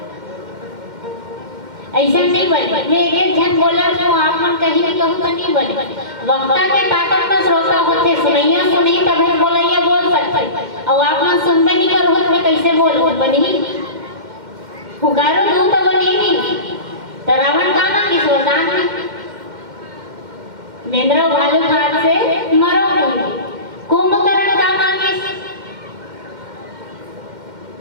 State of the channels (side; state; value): left; late; 2.2 ms